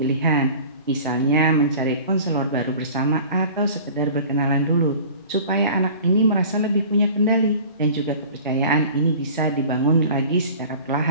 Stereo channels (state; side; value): inverted; both; correlation -0.43